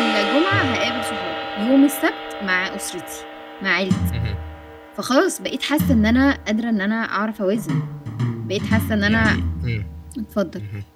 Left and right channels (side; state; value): both; identical; correlation 1.00